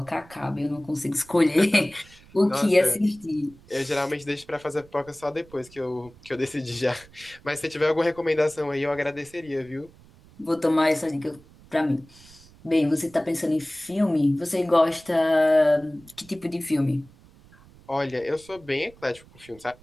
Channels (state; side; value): noise; right; rumble, 25 dB below the sound